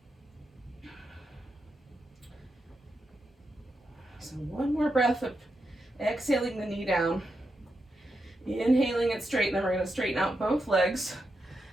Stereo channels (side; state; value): both; normal; correlation 0.86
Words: So one more breath of exhaling the knee down, inhaling it straight, and then we're going to straighten out both legs.